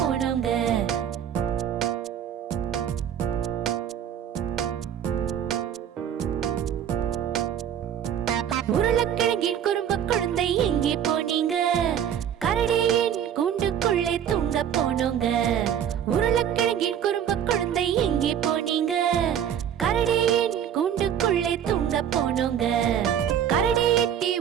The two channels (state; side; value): quieter; left; 9.2 dB